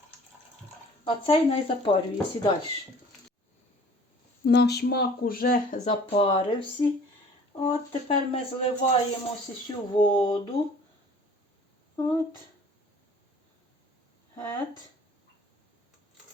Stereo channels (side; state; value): both; normal; correlation 0.50